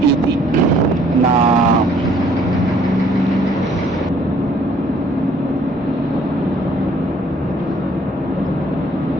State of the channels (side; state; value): both; normal; correlation 0.61